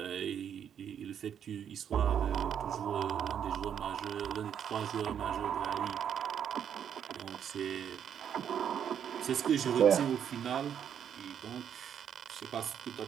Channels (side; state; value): left; quieter; 8.7 dB